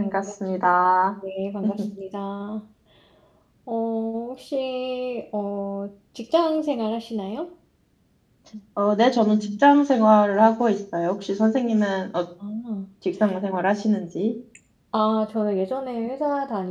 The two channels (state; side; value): identical; both; correlation 1.00